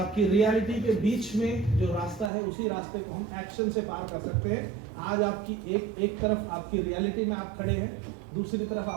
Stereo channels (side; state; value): left; drops out; at 2.3 s